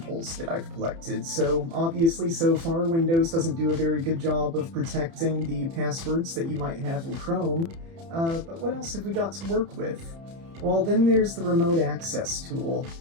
that I've collected? So obviously so far Windows doesn't do a very good job of protecting the passwords that you might have in Chrome, but what else have we got to work with? Well, then there's the remote access tool.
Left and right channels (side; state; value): left; late; 30 ms